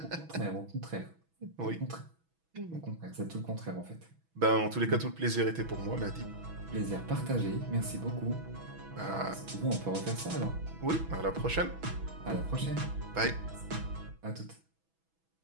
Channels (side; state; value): left; late; 6.1 ms